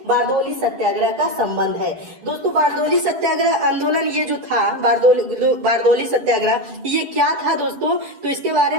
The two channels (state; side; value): late; left; 10 ms